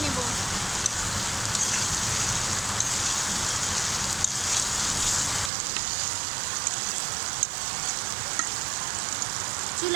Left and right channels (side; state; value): left; drops out; at 5.5 s